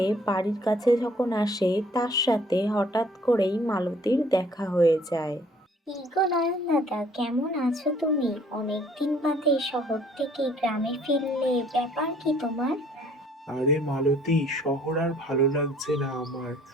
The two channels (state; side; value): normal; both; correlation 0.59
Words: বাড়ির কাছে যখন আসে, তার সাথে হঠাৎ করেই মালতীর দেখা হয়ে যায়। কি গো নয়ন দাদা, কেমন আছো তুমি? অনেকদিন বাদে শহর থেকে গ্রামে ফিরলে, ব্যাপার কি তোমার? আরে মালতী, শহর আর ভালো লাগছে না আমার।